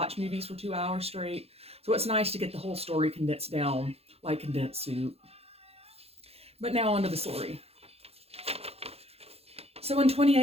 movies for 2 hours straight. So it's nice to get the whole story condensed down like condensed soup. But now onto the story. So in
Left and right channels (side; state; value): left; late; 0.29 ms